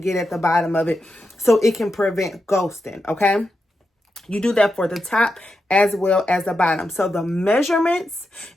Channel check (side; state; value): both; normal; correlation 0.87